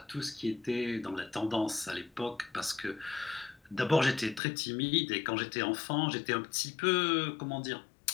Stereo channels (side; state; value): right; drops out; at 4.4 s